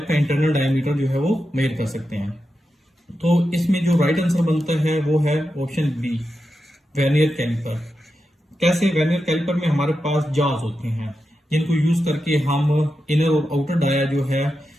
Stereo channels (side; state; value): both; normal; correlation 0.89